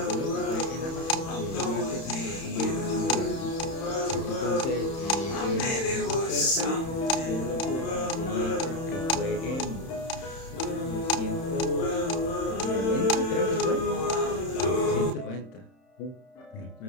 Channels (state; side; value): late; right; 31 ms